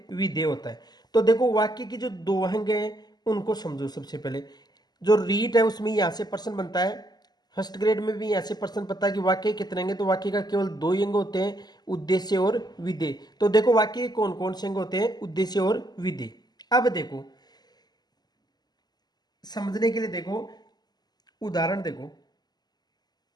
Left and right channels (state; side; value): late; right; 0.20 ms